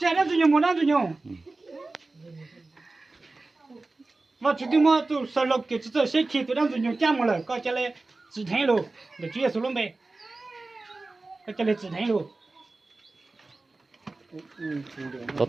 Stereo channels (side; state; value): left; quieter; 3.3 dB